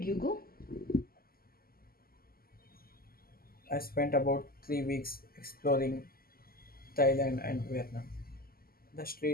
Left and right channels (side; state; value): right; late; 0.43 ms